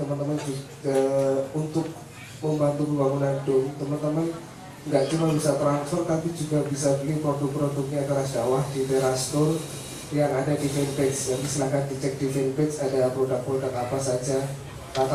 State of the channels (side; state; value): both; identical; correlation 1.00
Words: juga untuk membantu pembangunan dom, teman-teman nggak cuma bisa transfer, tapi juga bisa beli produk-produknya Teras Dakwah di Teras Store yang ada di fanpage. Jadi silahkan dicek di fanpage ada produk-produk apa saja.